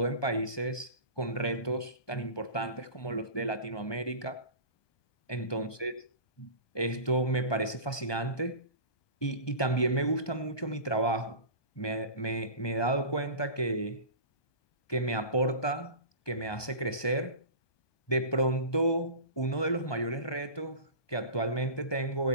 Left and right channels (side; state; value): right; late; 1.2 ms